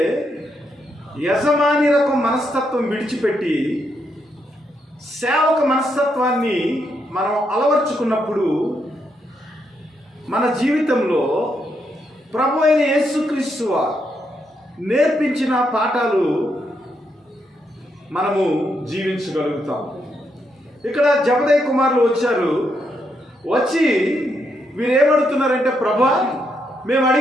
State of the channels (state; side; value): normal; both; correlation 0.79